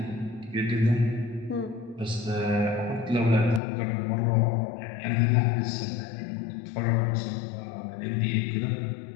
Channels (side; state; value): right; drops out; at 3.6 s